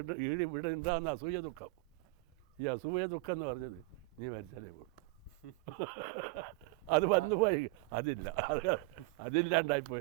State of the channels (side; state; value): left; quieter; 24.0 dB